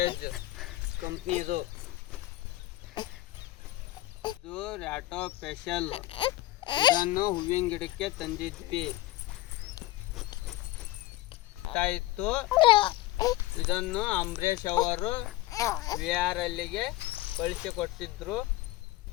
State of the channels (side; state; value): right; quieter; 16.8 dB